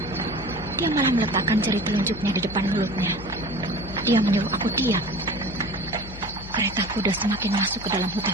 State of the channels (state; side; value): noise; left; hum, 13 dB below the sound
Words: Dia malah meletakkan jari telunjuknya di depan mulutnya. Dia menyuruh aku diam. Kereta kuda semakin masuk ke dalam